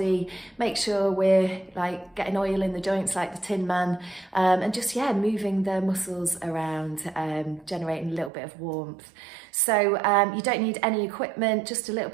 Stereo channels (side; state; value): left; drops out; at 8.3 s